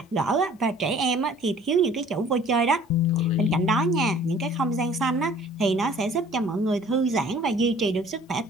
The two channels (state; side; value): normal; both; correlation 0.52